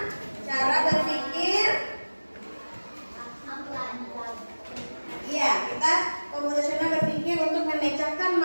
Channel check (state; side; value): inverted; both; correlation -1.00